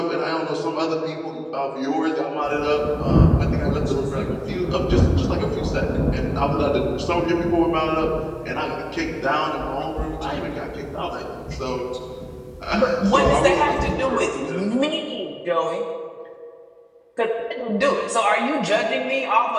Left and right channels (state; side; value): identical; both; correlation 1.00